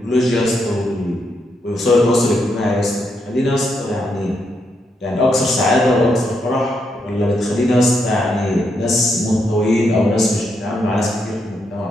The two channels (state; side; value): normal; both; correlation 0.80